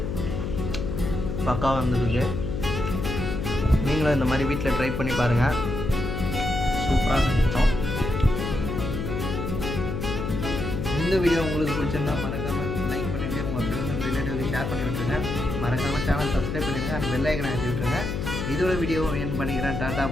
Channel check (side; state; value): left; noise; hum, 3 dB below the sound